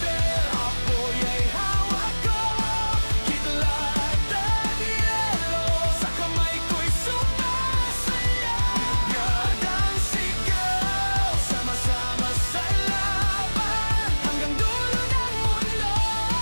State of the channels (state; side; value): inverted; both; correlation -1.00